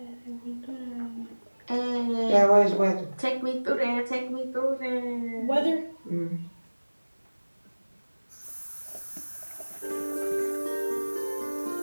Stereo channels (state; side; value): inverted; both; correlation -1.00